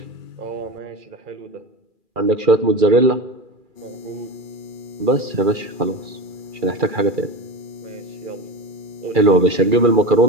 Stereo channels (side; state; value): left; late; 2.4 ms